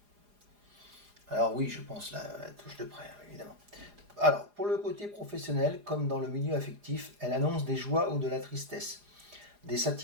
Alors oui, je pense la touche de près, évidemment. Alors, pour le côté professionnel, comme dans le milieu affectif, elle annonce des joies ou de la tristesse, des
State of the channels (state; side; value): late; left; 4.9 ms